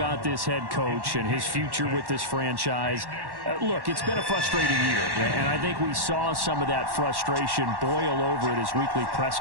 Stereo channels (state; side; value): late; left; 1.1 ms